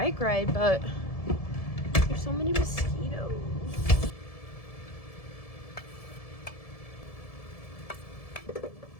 ride, but there's so many mosquitoes.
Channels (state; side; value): late; right; 1.7 ms